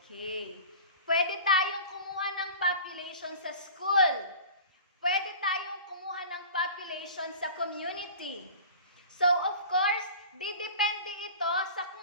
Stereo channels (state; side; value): inverted; both; correlation -0.39